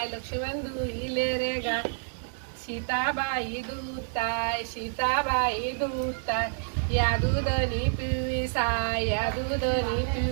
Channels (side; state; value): left; silent; 59 dB below the other